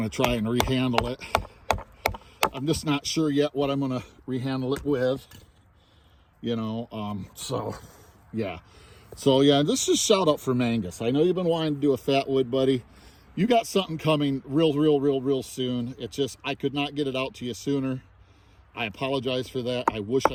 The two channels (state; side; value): identical; both; correlation 1.00